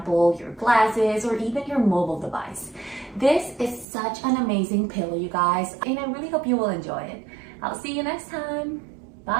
your glasses, or even your mobile device. This is such an amazing pillow, you guys, and I really hope you will enjoy it. I'll see you next time.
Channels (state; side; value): drops out; left; at 3.9 s